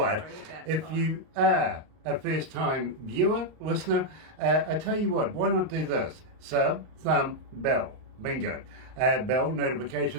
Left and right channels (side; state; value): left; late; 38 ms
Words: if you are a first time viewer, listener, I tell you what, why not do this? Sub, thumb, bell, bingo. Bell